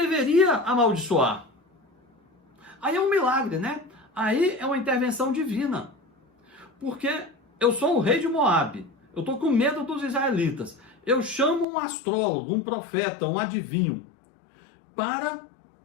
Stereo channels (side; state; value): right; drops out; at 11.7 s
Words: amaldiçoar. Aí é um milagre, né? Aí é uma intervenção divina. Porque eu sou o rei de Moabe, eu estou com medo dos israelitas. Eu chamo um astrólogo, um profeta, um adivinho, para